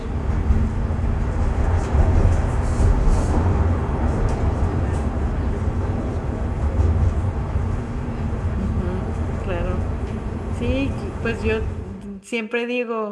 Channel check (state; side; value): identical; both; correlation 1.00